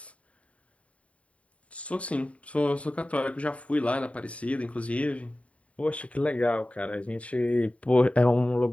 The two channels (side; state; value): right; late; 0.065 ms